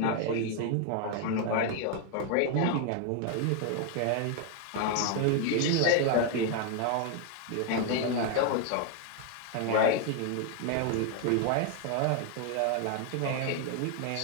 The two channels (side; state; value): both; different; correlation 0.01